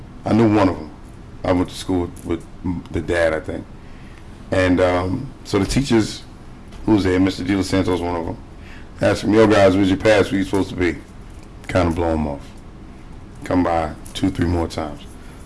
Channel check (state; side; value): identical; both; correlation 1.00